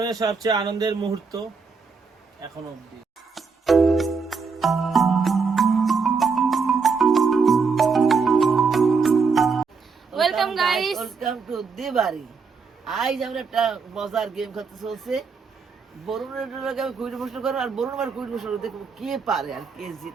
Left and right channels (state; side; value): quieter; left; 5.0 dB